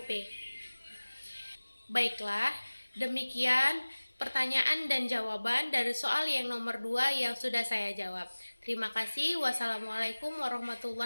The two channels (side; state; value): both; inverted; correlation -1.00